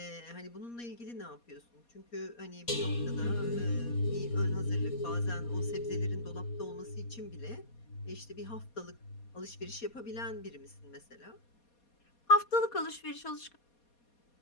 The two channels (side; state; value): right; late; 4.2 ms